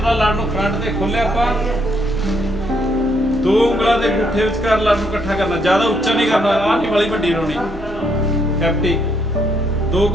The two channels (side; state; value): both; normal; correlation 0.72